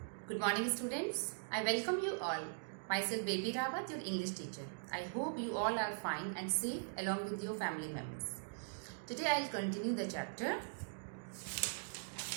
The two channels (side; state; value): left; silent; digital silence